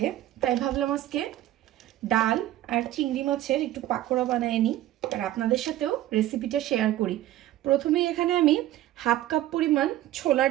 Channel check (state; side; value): quieter; left; 14.0 dB